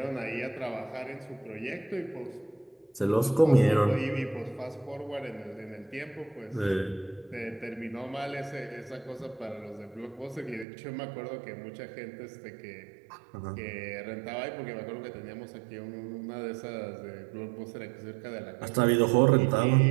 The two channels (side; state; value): left; drops out; at 10.7 s